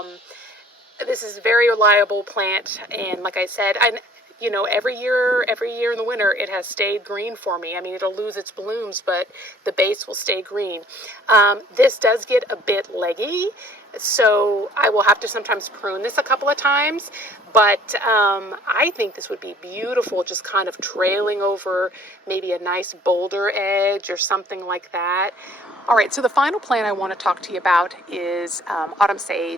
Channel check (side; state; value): both; normal; correlation 0.55